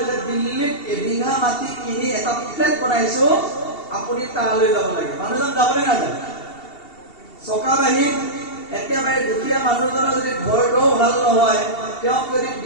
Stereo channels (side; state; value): right; late; 2.7 ms